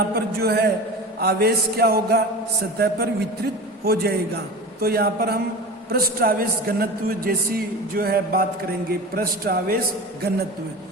पर जो है आवेश क्या होगा, सतह पर वितरित हो जाएगा। तो यहाँ पर हम पृष्ठ आवेश घनत्व जैसी जो है बात करेंगे, पृष्ठ आवेश घनत्व।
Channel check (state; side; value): normal; both; correlation 0.32